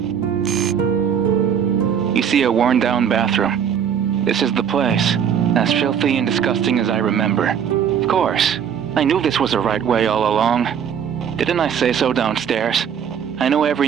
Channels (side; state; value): left; quieter; 8.1 dB